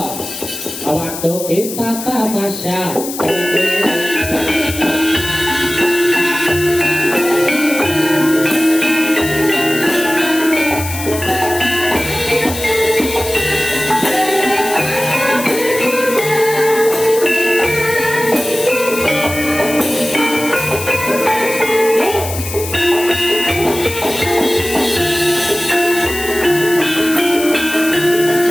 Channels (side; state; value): left; noise; hiss, 9 dB below the sound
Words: Waktu kita tamasya.